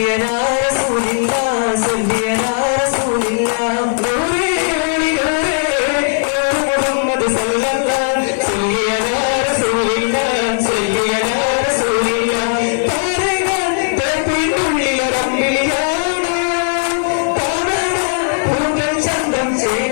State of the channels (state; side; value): silent; right; digital silence